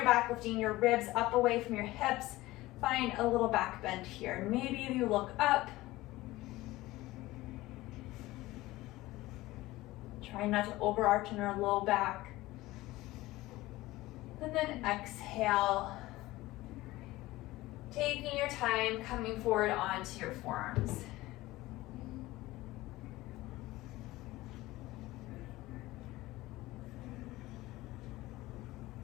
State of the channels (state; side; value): quieter; right; 18.4 dB